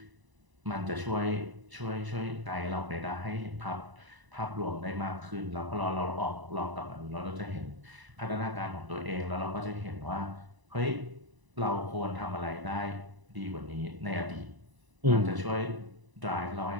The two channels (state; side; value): late; left; 1.0 ms